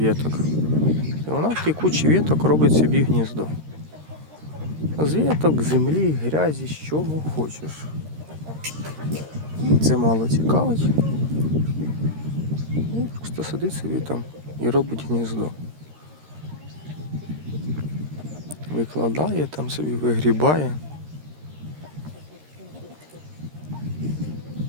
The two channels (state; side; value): late; left; 13 ms